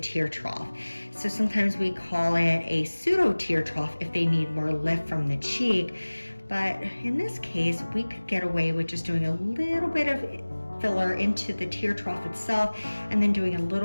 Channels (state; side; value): inverted; both; correlation -1.00